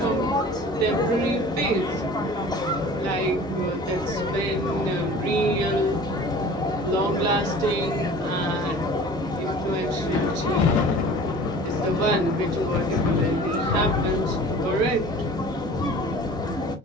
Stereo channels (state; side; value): normal; both; correlation 0.44